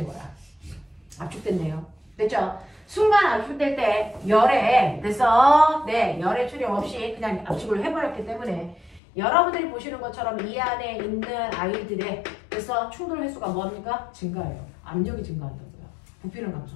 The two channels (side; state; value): right; drops out; at 9.0 s